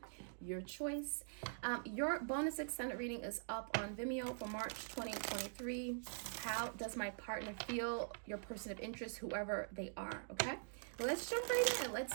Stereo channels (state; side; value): silent; left; digital silence